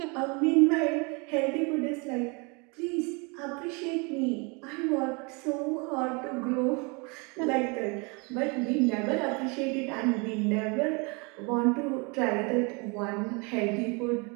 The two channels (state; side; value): quieter; left; 30.8 dB